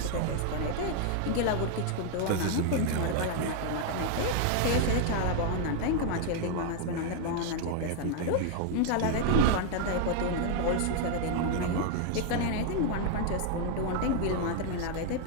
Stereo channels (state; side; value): different; both; correlation 0.00